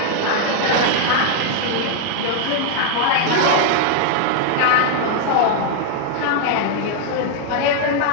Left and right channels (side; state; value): both; different; correlation 0.00